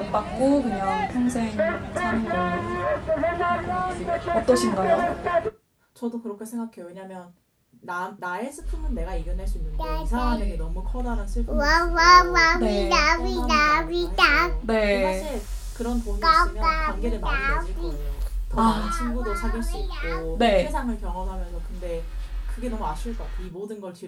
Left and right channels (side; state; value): both; identical; correlation 1.00